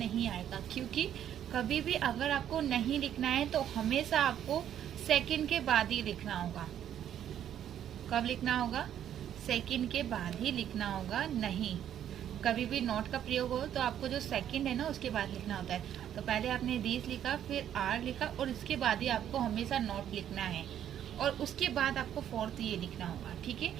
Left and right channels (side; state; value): left; quieter; 10.3 dB